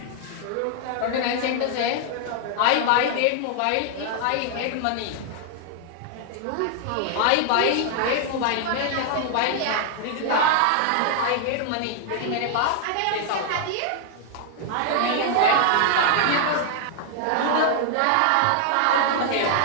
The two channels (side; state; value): both; different; correlation 0.00